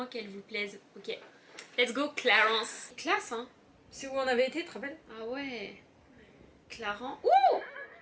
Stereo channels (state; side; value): identical; both; correlation 1.00